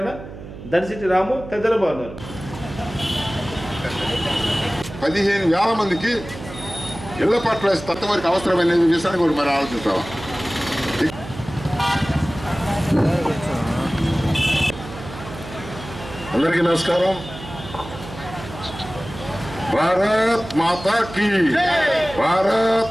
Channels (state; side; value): noise; right; hum, 13 dB below the sound